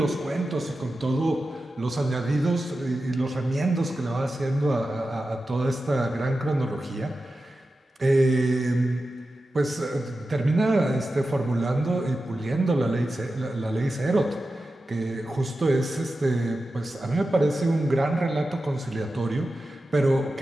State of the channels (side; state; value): both; normal; correlation 0.92